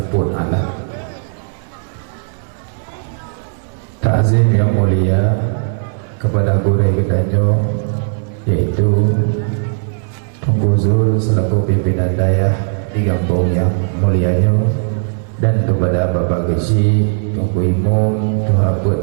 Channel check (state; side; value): silent; left; digital silence